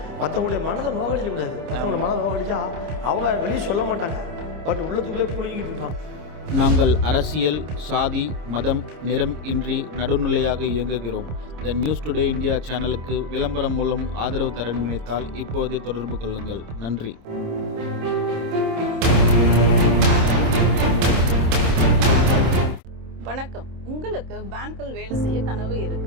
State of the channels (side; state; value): left; late; 26 ms